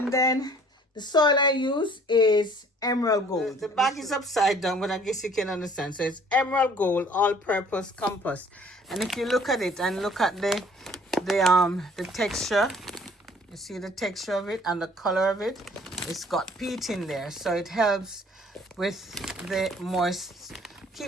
then the soil I use is emerald gold. The bag is upside down, but I guess you can understand. So it's emerald gold all-purpose compost. And if you look at it and look at the texture, you see the texture of it and the color of it. It's got peat in there, so it helps with the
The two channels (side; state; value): both; normal; correlation 0.56